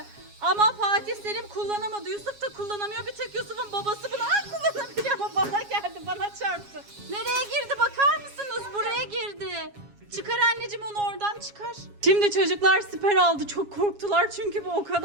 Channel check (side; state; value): left; late; 7.3 ms